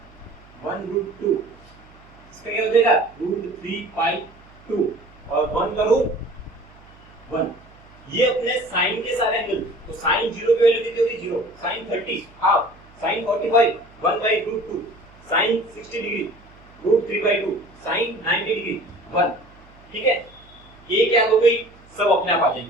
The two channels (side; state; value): right; noise; hum, 25 dB below the sound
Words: 1√2। इसका क्या हो जाएगा? √3/2 और 1 का रूट 1। ये अपने साइन के सारे एंगल। तो साइन 0 की वैल्यू कितनी होगी? 0। Sine 30 half, sine 45 1/√2, sine 60 degree √3/2, sine 90 degree 1। ठीक है, ये क्या हो गई? सब अपने आप आ